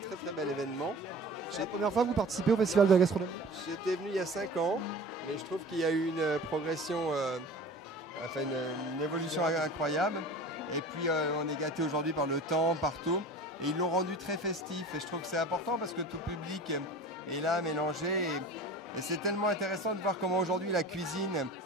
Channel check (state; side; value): normal; both; correlation 0.39